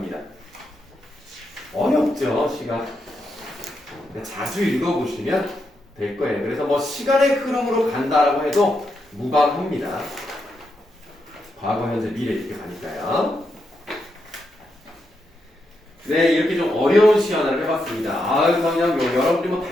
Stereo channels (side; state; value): both; normal; correlation 0.83